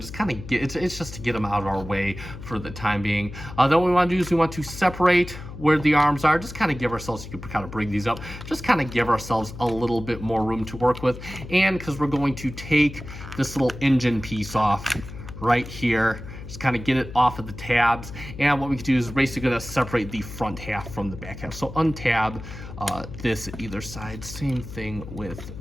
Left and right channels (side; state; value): left; noise; hum, 12 dB below the sound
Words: just kind of get it's just to get them out of our way for the time being. Then what we want to do is we want to separate where the arms are. Just kind of give ourselves, you can kind of bring these up, just kind of give ourselves a little bit more room to work with. And because we're going to take this little engine piece off right here, just kind of get it off of the tabs. And what we can do is basically going to separate the front half from the back half. So untab this at either side. Same thing with